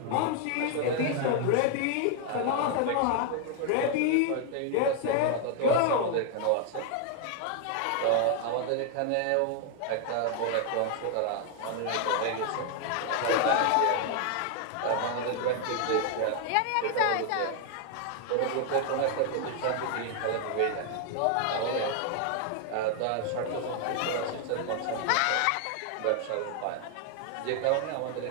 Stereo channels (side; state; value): both; different; correlation 0.00